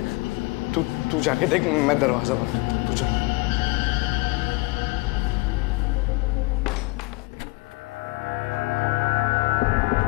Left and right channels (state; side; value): quieter; right; 24.3 dB